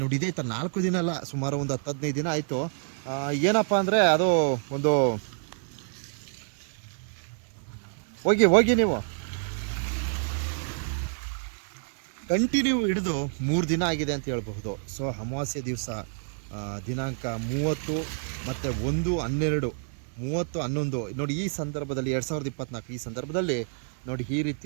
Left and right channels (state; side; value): silent; left; digital silence